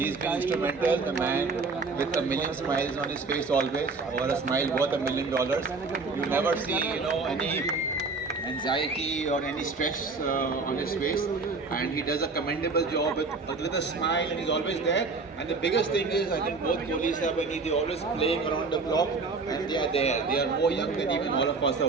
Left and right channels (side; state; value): left; quieter; 4.1 dB